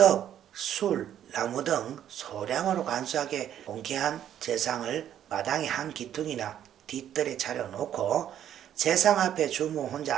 술, 나무 등 소량으로 간소하게 공개한 제상을 마당의 한 기둥이나 뒷뜰에 차려놓고 제상 앞에 주무 혼자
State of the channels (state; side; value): quieter; left; 10.5 dB